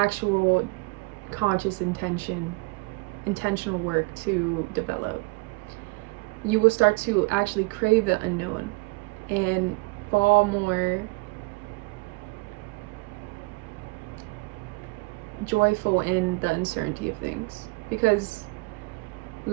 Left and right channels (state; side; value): quieter; left; 26.7 dB